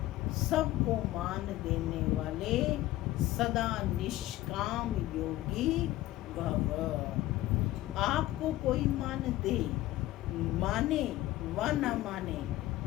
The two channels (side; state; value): right; quieter; 16.1 dB